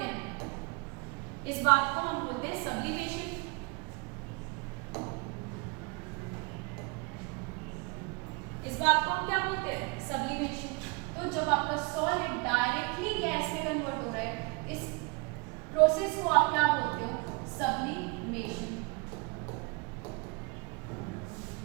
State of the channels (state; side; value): quieter; left; 29.7 dB